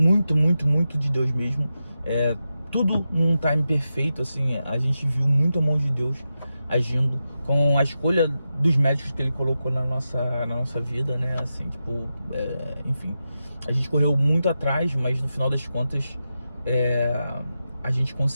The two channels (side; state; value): both; inverted; correlation -0.90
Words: de Deus mesmo. Tudo num time perfeito, assim, a gente viu muito a mão de Deus agindo com a escolha dos médicos que ele colocou na nossa vida, né? Assim, tipo, enfim, a gente correu muito atrás, mas no final das contas a gente